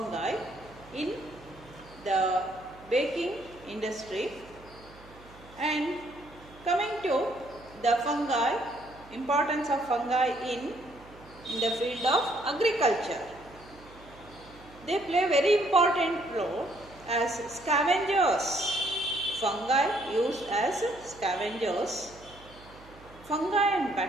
in the baking industry. And coming to the fungi, importance of fungi in the field of agriculture. They play a very important role as scavengers. Fungi used as scavengers. Fungi and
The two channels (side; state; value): right; noise; hum, 22 dB below the sound